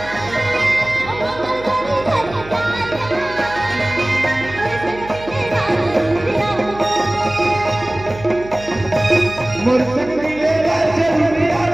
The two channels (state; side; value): noise; right; hum, 16 dB below the sound